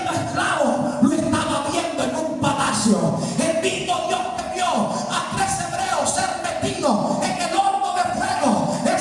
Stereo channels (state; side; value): identical; both; correlation 1.00